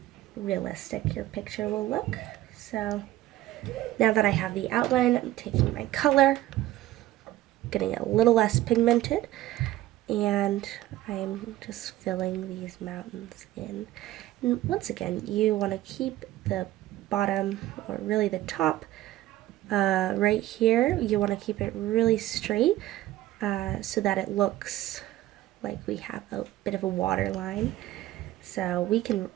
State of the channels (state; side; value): quieter; left; 15.4 dB